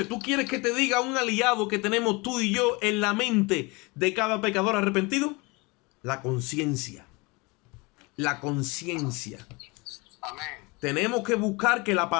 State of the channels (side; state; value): right; quieter; 26.2 dB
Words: ¿tú quieres que te diga un aliado que tenemos tú y yo en la mente de cada pecador arrepentido? La conciencia. La conciencia. Amén. Tenemos que buscar que la